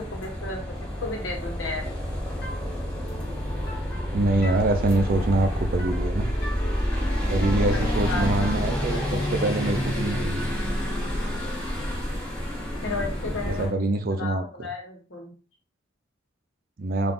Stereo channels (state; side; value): normal; both; correlation 0.68